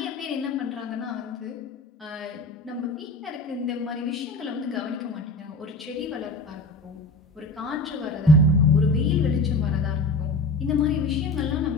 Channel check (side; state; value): right; quieter; 3.1 dB